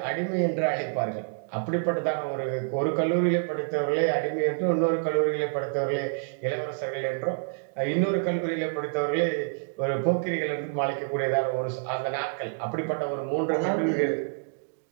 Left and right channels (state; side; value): silent; left; digital silence